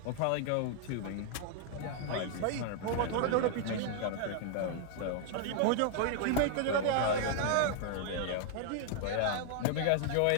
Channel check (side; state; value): both; different; correlation 0.00